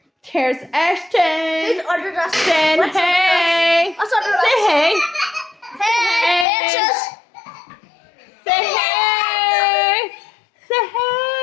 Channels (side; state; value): right; drops out; at 6.5 s